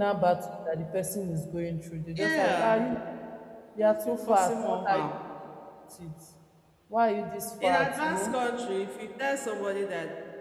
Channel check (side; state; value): both; identical; correlation 1.00